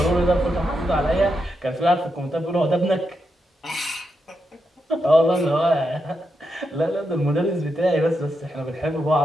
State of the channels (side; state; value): both; normal; correlation 0.85